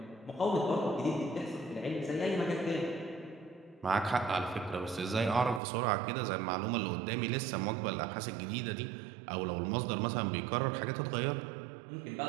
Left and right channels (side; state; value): left; drops out; at 5.6 s